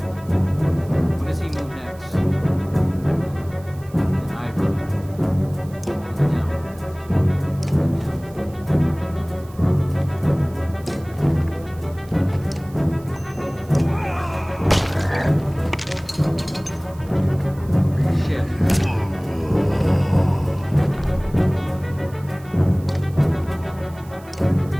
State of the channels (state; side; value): noise; right; hiss, 25 dB below the sound